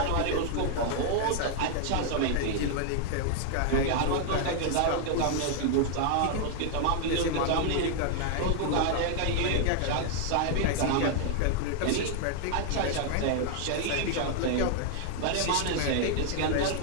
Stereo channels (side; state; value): both; different; correlation 0.00